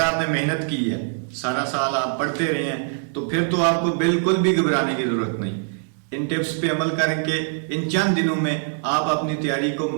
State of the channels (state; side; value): silent; left; digital silence